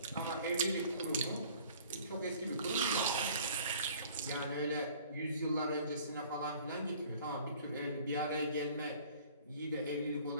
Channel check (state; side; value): inverted; both; correlation -0.51